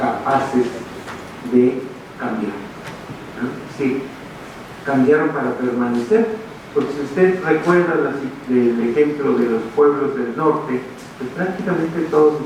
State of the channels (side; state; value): both; identical; correlation 1.00